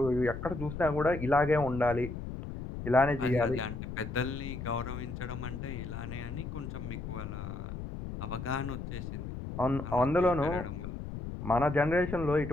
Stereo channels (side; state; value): left; noise; rumble, 7 dB below the sound